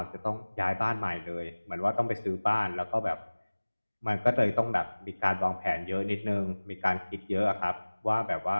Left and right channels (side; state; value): both; inverted; correlation -1.00